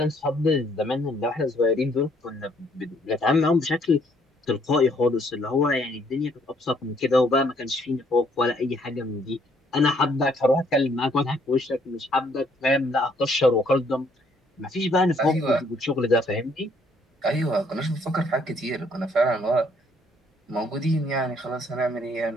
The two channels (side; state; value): both; normal; correlation 0.65